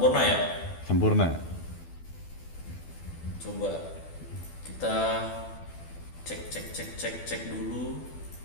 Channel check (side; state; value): right; late; 12 ms